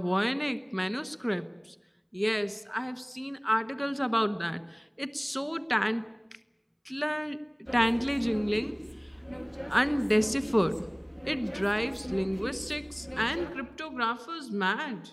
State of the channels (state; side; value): identical; both; correlation 1.00